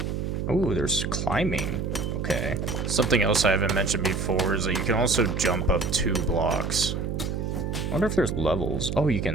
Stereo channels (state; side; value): noise; right; hum, 2 dB below the sound